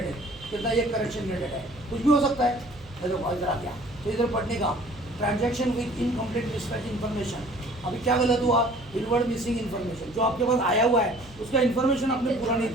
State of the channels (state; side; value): noise; right; hum, 21 dB below the sound